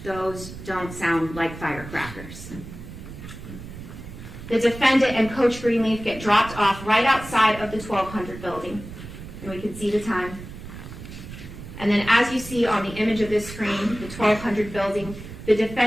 "Those don't sound like firecrackers." The defendant and Coach Greenleaf get dropped off right outside of the 1200 building, and we can see the time. And then as you see on the image of this screen, the 1200 building, the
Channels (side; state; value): right; noise; rumble, 13 dB below the sound